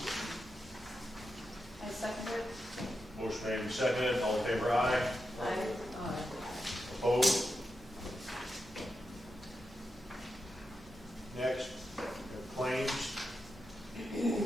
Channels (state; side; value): normal; both; correlation 0.88